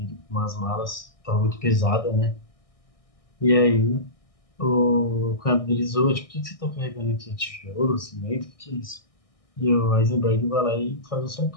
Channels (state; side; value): late; right; 1.6 ms